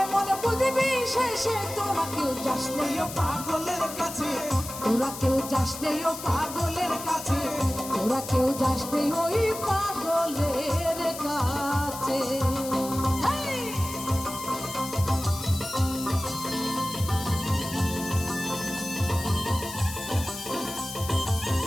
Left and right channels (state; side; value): noise; left; hiss, 10 dB below the sound